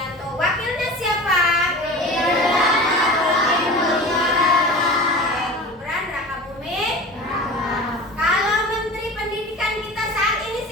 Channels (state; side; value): normal; both; correlation 0.35